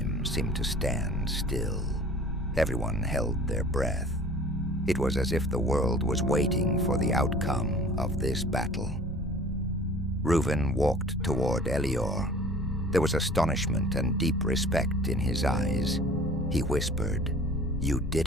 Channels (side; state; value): both; normal; correlation 0.46